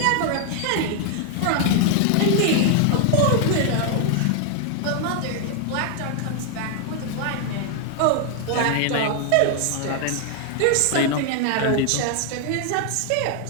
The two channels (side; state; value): both; different; correlation 0.00